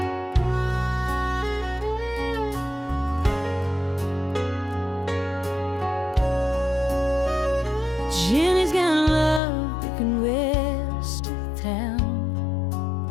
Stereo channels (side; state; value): right; drops out; at 9.4 s